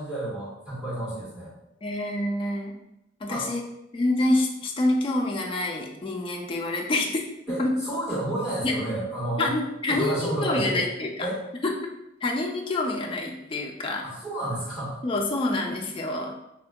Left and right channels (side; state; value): both; normal; correlation 0.52